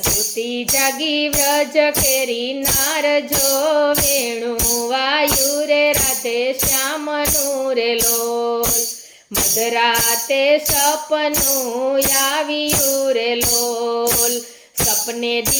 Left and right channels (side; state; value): both; identical; correlation 1.00